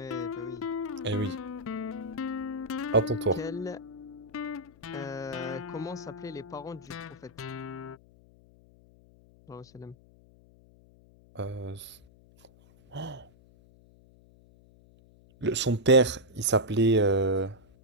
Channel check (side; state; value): left; noise; hum, 26 dB below the sound